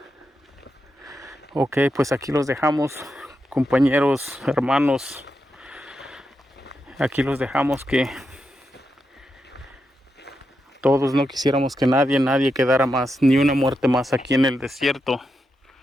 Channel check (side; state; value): both; normal; correlation 0.86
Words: Ok, pues aquí los dejamos, compañeros, hermanos. Aquí los dejamos, que todos no quisiéramos que nadie quedara más, ni una muerte más aquí en el desierto.